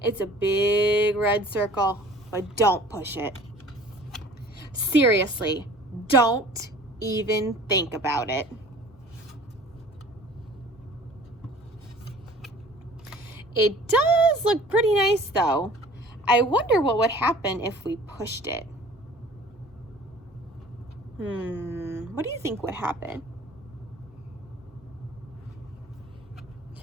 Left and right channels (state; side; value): normal; both; correlation 0.48